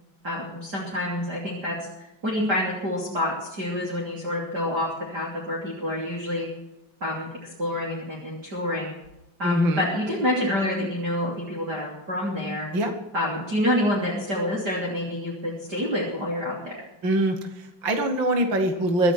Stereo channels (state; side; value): late; left; 5.0 ms